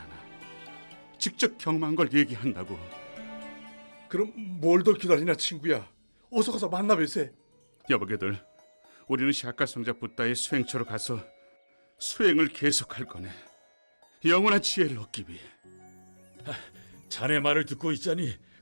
않아. 직접 경험한 걸 얘기한다고. 그럼 뭘 더 기다리나 친구야. 어서 가서 만나뵐세. 여보게들, 우리는 샤카 성자 붓다의 수행처로 가서 수행을 계속할 거네. 영원한 지혜를 얻기 위해. 자네 말을 듣고 있자니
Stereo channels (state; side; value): inverted; both; correlation -1.00